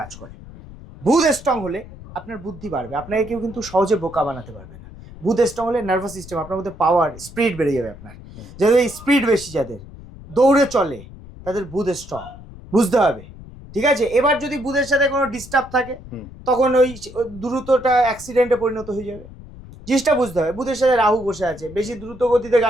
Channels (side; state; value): left; noise; rumble, 17 dB below the sound